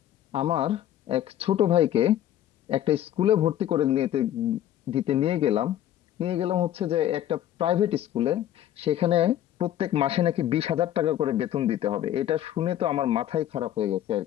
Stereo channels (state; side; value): quieter; right; 12.0 dB